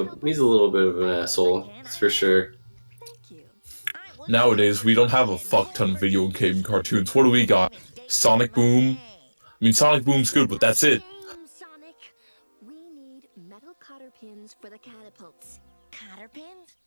he's a little bit of an asshole, that's for sure. Thank you. Nowadays, we don't have a fuck ton of video game cartoons. What do we got? Sonic Boom? I mean, Sonic Boom's good, but that's it. Sonic. We need metal cotter pins for the catapults. Cotter pins?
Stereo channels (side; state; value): both; inverted; correlation -1.00